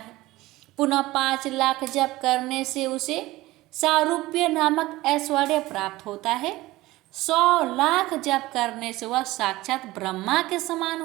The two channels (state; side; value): quieter; left; 18.4 dB